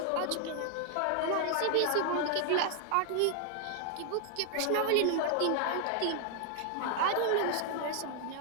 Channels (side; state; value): both; different; correlation 0.00